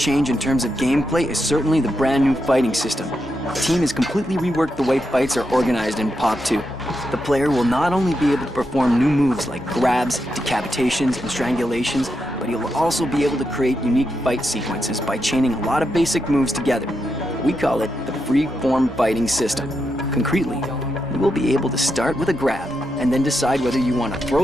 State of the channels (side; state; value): both; normal; correlation 0.85